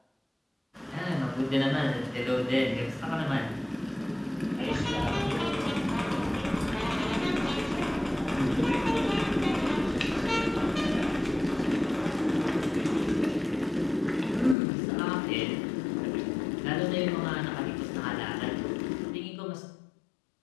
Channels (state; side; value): drops out; right; at 14.6 s